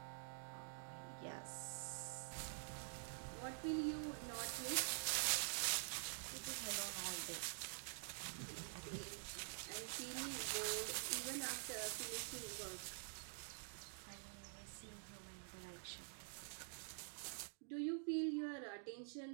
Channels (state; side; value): silent; left; digital silence